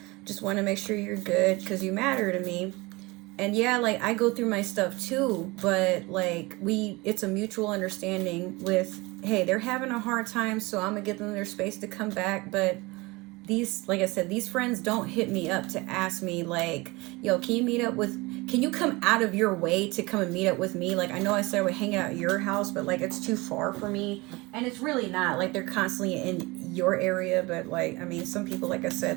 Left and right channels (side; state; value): left; quieter; 23.5 dB